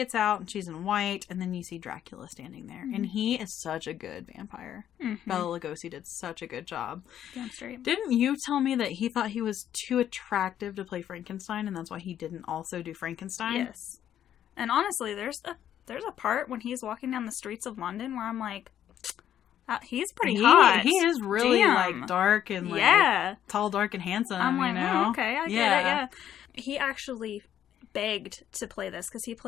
out, and she's in white, and then you see Dracula standing there. And he is such a good vampire. Bela Lugosi did such a good job. Damn straight. Didn't you tell me that he thought he was too attractive to play Frankenstein, and that's why he didn't also do Frankenstein? Yes. And honestly, there's a part when he's walking down the streets of London where I'm like, he's pretty hot. He is really like dark and like tall, dark, and handsome. I'm like, you know? Oh, okay, I get it. Yeah. He actually begged to play this because he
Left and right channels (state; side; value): quieter; right; 10.5 dB